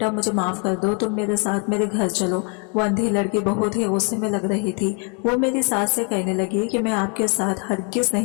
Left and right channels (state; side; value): quieter; right; 37.2 dB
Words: मुझे माफ कर दो, तुम मेरे साथ मेरे घर चलो। वो अंधी लड़की बहुत ही गुस्से में लग रही थी। वो मेरी सास से कहने लगी कि मैं आपके साथ हरगिज